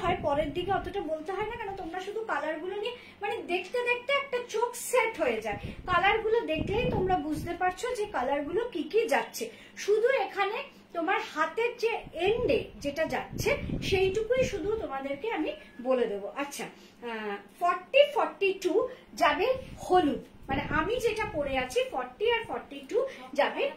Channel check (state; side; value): identical; both; correlation 1.00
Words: হয় পরের দিকে অতটা বলতে হয় না, কেন তোমরা শুধু কালারগুলো নিয়ে মানে দেখতে দেখতে একটা চোখ সেট হয়ে যায়, কালারগুলো দেখলেই তোমরা বুঝতে পারছো যে কালারগুলো কি কি যাচ্ছে। শুধু এখানে তোমার হাতের যে এন্ডে যেটা যাচ্ছে সেইটুকুই শুধু তোমাদেরকে আমি বলে দেবো। আচ্ছা 40-42 যাবে হলুদ, মানে আমি যেটা পরে আছি 40 আর 42 যাবে।